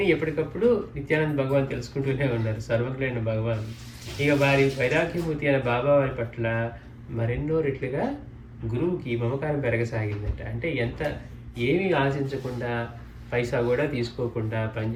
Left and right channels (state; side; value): identical; both; correlation 1.00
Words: ఎప్పటికప్పుడు నిత్యానంద భగవాన్ తెలుసుకుంటూనే ఉన్నారు, సర్వజ్ఞులైన భగవాన్. ఇక వారి వైరాగ్యమూర్తి అయిన బాబా వారి పట్ల మరెన్నో రెట్లుగా గురువుకి మమకారం పెరగసాగిందట. అంటే ఏమీ ఆశించకుండా, పైసా కూడా తీసుకోకుండా